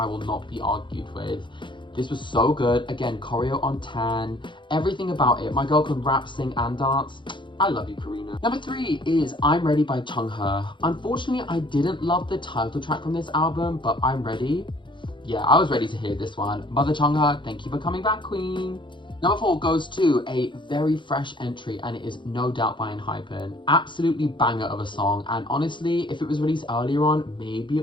will not be argued with. This was so good. Again, choreo on 10. Everything about it. My girl can rap, sing, and dance. I love you, Karina. Number 3 is I'm Ready by Chungha. Unfortunately, I didn't love the title track from this album, but I'm ready. Yeah, I was ready to hear this one. Mother Chungha, thank you for coming back, queen. Number 4 goes to a very fresh entry, and it is No Doubt by ENHYPEN. Absolutely banger of a song, and honestly, if it was released earlier on, maybe it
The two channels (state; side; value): late; right; 0.23 ms